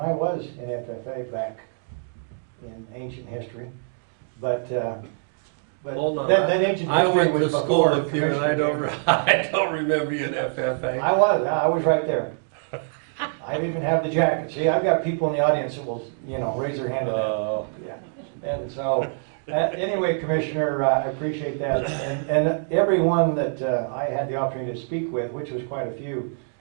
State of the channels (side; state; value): left; silent; digital silence